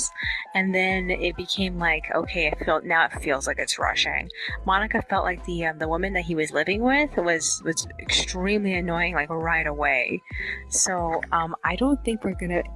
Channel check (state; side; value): identical; both; correlation 1.00